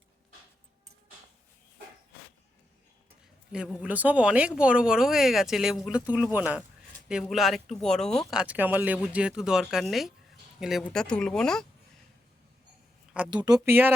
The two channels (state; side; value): normal; both; correlation 0.85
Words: লেবুগুলো সব অনেক বড় বড় হয়ে গেছে, লেবুগুলো তুলবো না। লেবুগুলো আর একটু বড় হোক, আজকে আমার লেবুর যেহেতু দরকার নেই, লেবুটা তুলবো না। আর দুটো